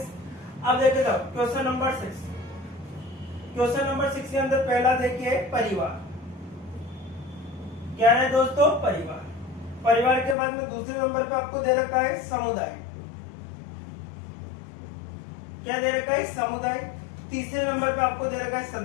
अब देखिए साहब क्वेश्चन नंबर 6, क्वेश्चन नंबर 6 के अंदर पहला देखिए परिवार। क्या है दोस्तों, परिवार। परिवार के बाद में दूसरे नंबर पे आपको दे रखा है समुदाय। क्या दे रखा है, समुदाय। तीसरे नंबर पे आपको दे रखा है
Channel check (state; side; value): drops out; right; at 10.4 s